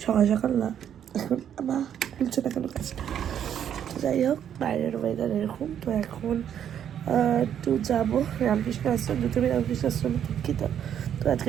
সকাল সকাল না, এখন আবার খুলছে না কেন কাজটা। তো যাই হোক, বাইরের ওয়েদার এরকম। তো এখন একটু যাবো রামকৃষ্ণ আশ্রম, দুটোই রামকৃষ্ণ আশ্রমে দীক্ষিত। তো আজকে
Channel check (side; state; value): left; quieter; 9.4 dB